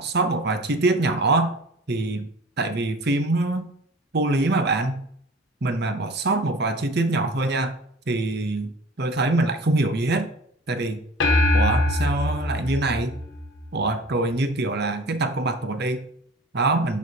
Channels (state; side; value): normal; both; correlation 0.43